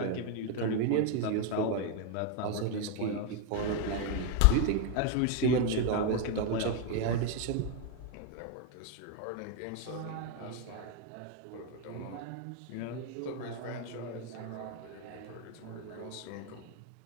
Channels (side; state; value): both; different; correlation 0.01